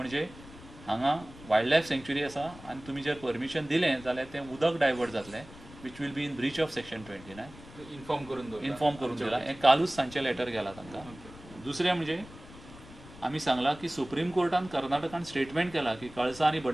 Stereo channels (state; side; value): noise; left; rumble, 18 dB below the sound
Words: हांगा वायल्ड लायफ सँक्च्युरी आसा आनी तुमी जर परमिशन दिलें जाल्यार तें उदक डायवर्ट जातलें which will be in breach of section 29. Inform करून दिला. हें कालूच सांजचें लेटर गेलां तांकां. दुसरें म्हणजे आमी सांगलां की सुप्रीम कोर्टान कर्नाटकान स्टेटमेंट केला की कळसा आनी